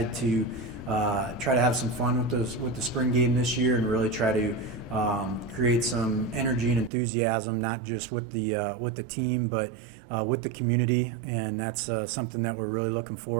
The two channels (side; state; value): left; drops out; at 6.9 s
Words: to try to have some fun with the spring game this year and really try to create some energy and enthusiasm, not just with the team, but with the community, and that's something that we're really looking